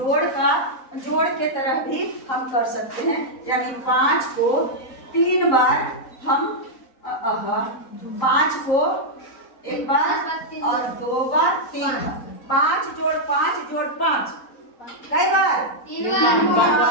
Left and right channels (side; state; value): right; late; 3.9 ms